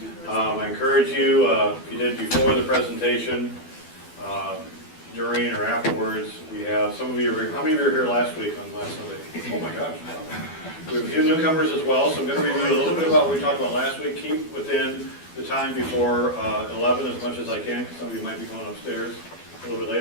I encourage you, if you did before the presentation, during or afterwards, we have some of you are here. How many of you were here last week on last Sunday? Oh my gosh. We have a few newcomers as well, so I'm going to review a little bit about what we talked about last week. Keep within the time before 11 as much as I can, because some of you might be going upstairs a little bit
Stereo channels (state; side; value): late; right; 12 ms